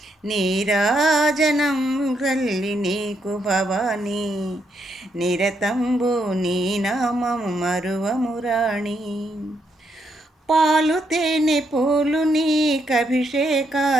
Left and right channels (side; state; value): both; normal; correlation 0.77